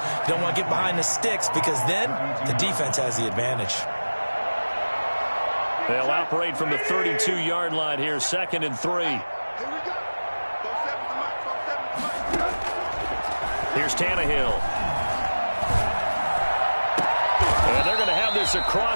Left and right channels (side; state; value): both; inverted; correlation -1.00